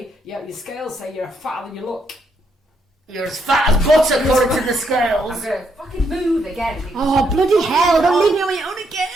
yeah, your scales say you're fatter than you look. You're as fat as butter according to the scales. I'm going to fucking move again. Oh, bloody hell, don't leave me on my own again.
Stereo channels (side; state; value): both; normal; correlation 0.76